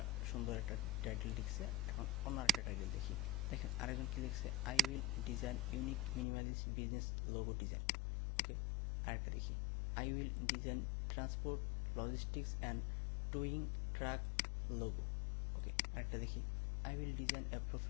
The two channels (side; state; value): right; drops out; at 6.2 s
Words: সুন্দর একটা টাইটেল লিখছে। এখন অন্য একটা টাইটেল দেখি, দেখেন আরেকজন কি লিখছে, I will design unique minimalist business logo design. Okay, আরেকটা দেখি, I will design transport logistics and towing truck logo. Okay, আরেকটা দেখি, I will design a